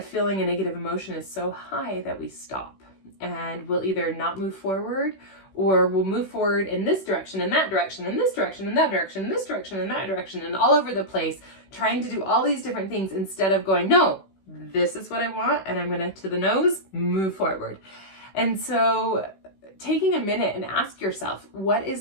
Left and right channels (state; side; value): late; right; 16 ms